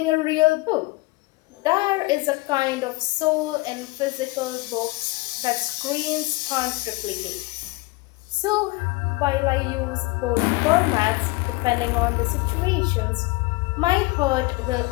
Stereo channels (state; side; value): quieter; right; 23.3 dB